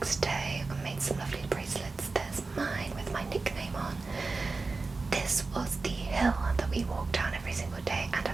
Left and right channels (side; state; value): left; quieter; 3.8 dB